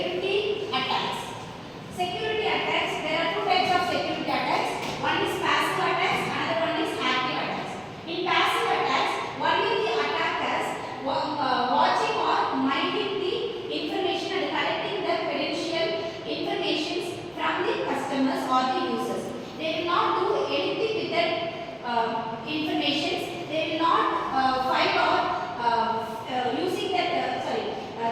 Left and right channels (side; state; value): both; identical; correlation 1.00